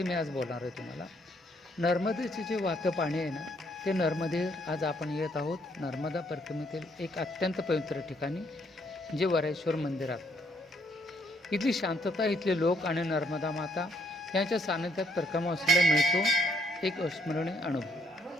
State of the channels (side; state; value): both; normal; correlation 0.68